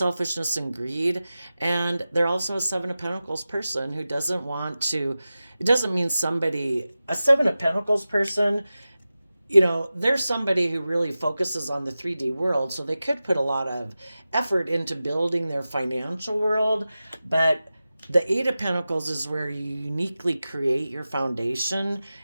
and greed. And they're also a Seven of Pentacles person who doesn't want to, it doesn't mean somebody, a Seven of Pentacles person, there's somebody who really focuses on the 3D world, so they could put a lot of effort into building their financial world, but the Eight of Pentacles is where you uniquely create your foundation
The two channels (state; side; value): inverted; both; correlation -0.95